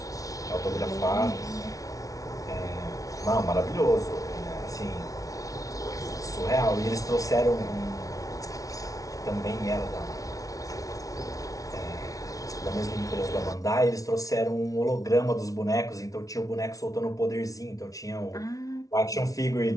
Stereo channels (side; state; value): right; late; 0.17 ms